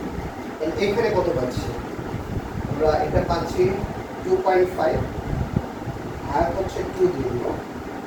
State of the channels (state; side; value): identical; both; correlation 1.00